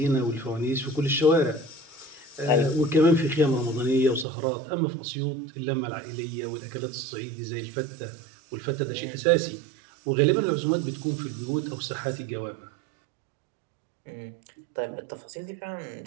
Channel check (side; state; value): left; drops out; at 4.2 s